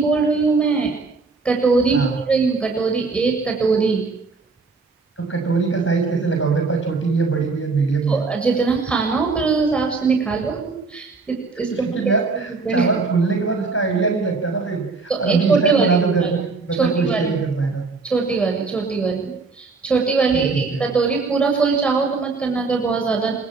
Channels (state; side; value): quieter; left; 4.2 dB